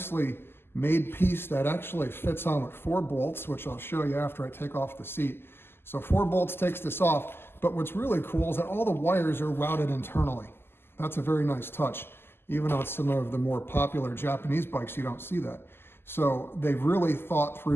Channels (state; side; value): late; right; 0.11 ms